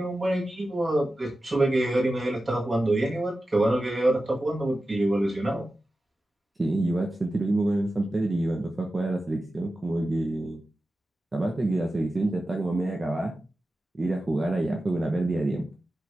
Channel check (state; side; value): normal; both; correlation 0.93